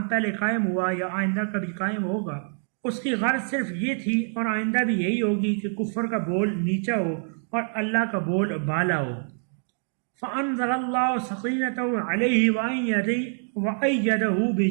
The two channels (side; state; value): left; silent; 57 dB below the other